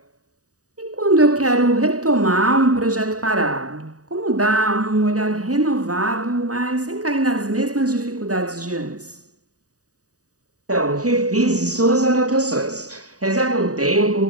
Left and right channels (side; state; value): left; late; 0.66 ms